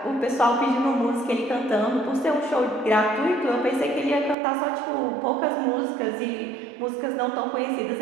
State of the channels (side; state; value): left; drops out; at 4.4 s